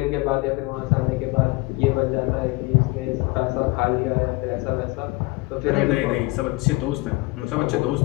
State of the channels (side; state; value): right; quieter; 23.1 dB